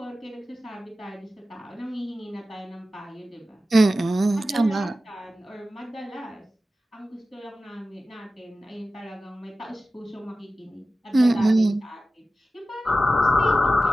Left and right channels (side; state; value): both; normal; correlation 0.94